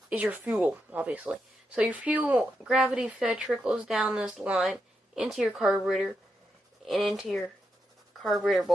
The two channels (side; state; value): both; normal; correlation 0.84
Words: is your fuel, obviously. So your fuel, gravity fed, trickles down this line into your carburetor and into your carburetor